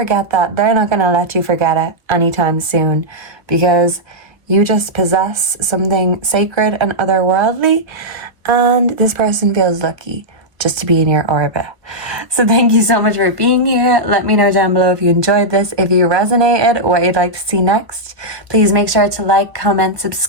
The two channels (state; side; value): late; left; 1.0 ms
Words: that. They're not going to let you forget it anytime soon, because you just possess something sacred and otherworldly, and this person feels lucky just to be in your orbit. So thank you so much for being here. Let me know down below if you enjoyed this, if you resonated, what you'd like to see next. Please make sure to like, comment,